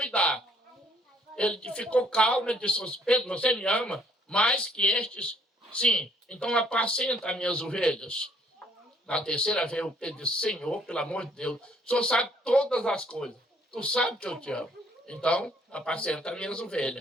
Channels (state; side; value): normal; both; correlation 0.64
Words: Ele ficou calmo, ele disse, Pedro, você me ama mais que estes? Sim, então apacenta as minhas ovelhas. Na terceira vez, o Pedro disse, Senhor, pelo amor de Deus, o Senhor sabe todas as coisas. Tu sabe que eu te amo. Então, apacenta as minhas